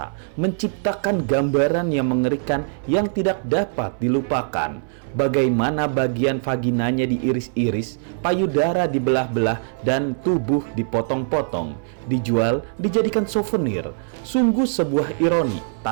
menciptakan gambaran yang mengerikan yang tidak dapat dilupakan. Bagaimana bagian vaginanya diiris-iris, payudara dibelah-belah, dan tubuh dipotong-potong, dijual, dijadikan souvenir. Sungguh sebuah ironi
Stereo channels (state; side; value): silent; left; 60 dB below the other